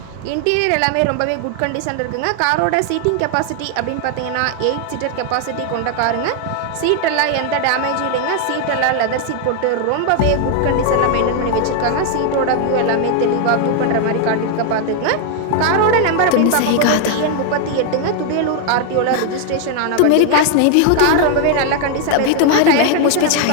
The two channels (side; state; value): both; different; correlation 0.00